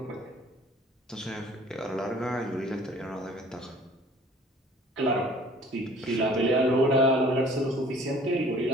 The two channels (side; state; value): both; normal; correlation 0.52